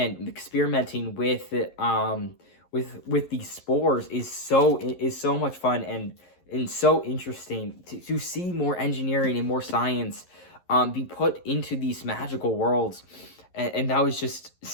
experimenting with these spores is so much fun and so interesting to see more engineering and more science be put into these magical worlds, and that was just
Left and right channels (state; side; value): late; right; 11 ms